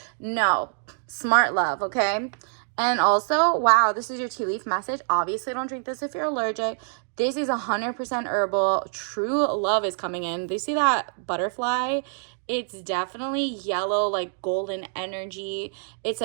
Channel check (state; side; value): silent; left; 61 dB below the other